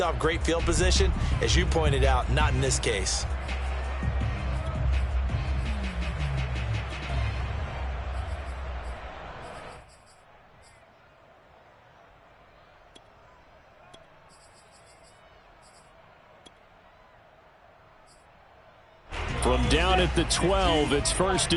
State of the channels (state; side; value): identical; both; correlation 1.00